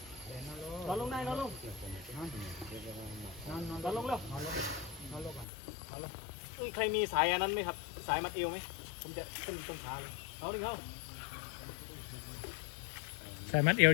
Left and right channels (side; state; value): right; drops out; at 5.5 s